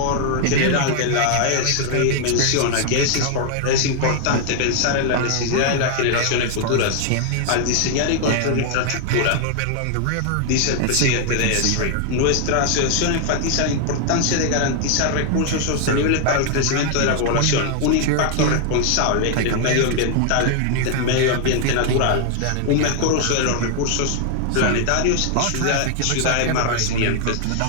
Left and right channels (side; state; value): both; different; correlation 0.00